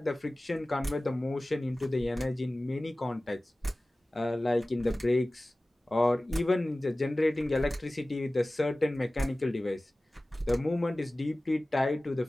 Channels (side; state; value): both; normal; correlation 0.97